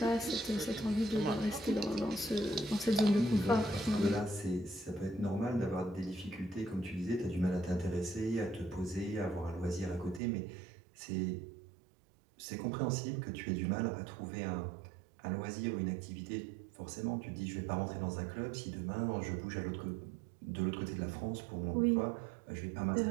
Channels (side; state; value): left; drops out; at 10.2 s